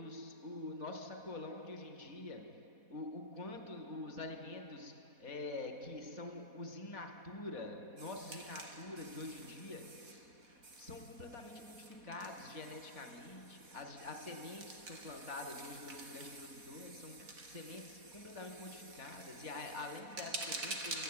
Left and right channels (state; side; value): late; left; 4.1 ms